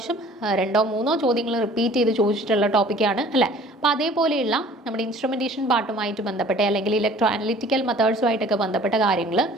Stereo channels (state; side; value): normal; both; correlation 0.50